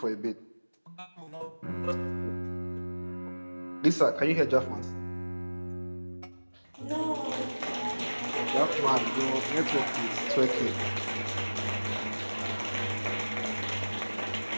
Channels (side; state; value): both; inverted; correlation -1.00